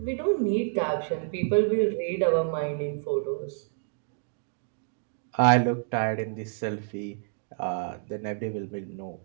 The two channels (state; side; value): silent; left; digital silence